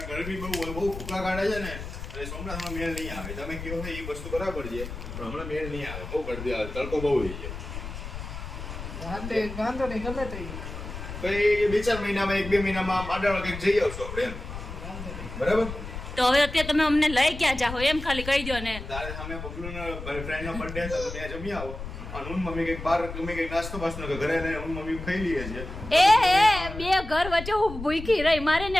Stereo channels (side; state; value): left; noise; rumble, 9 dB below the sound